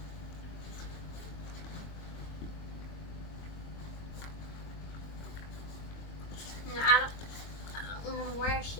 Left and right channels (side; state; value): right; late; 22 ms